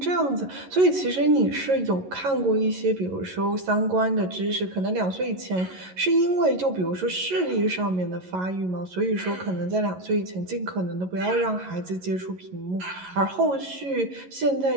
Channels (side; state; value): left; late; 11 ms